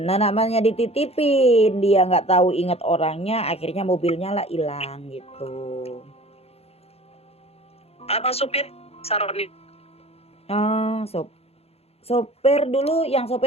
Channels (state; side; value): late; right; 0.29 ms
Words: Nah namanya dititipin, dia nggak tahu ingat orangnya, akhirnya mobilnya lah hilang gitu. Apa supir Saroni? Sopir dulu, yang